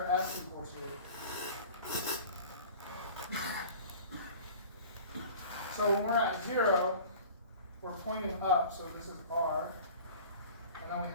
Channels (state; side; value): inverted; both; correlation -0.42